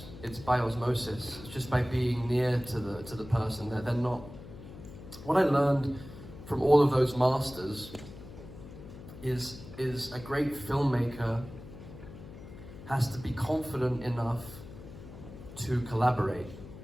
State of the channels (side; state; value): left; noise; hum, 15 dB below the sound